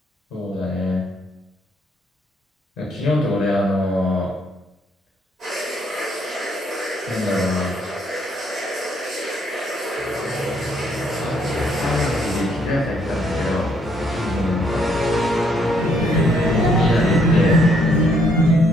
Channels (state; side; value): normal; both; correlation 0.69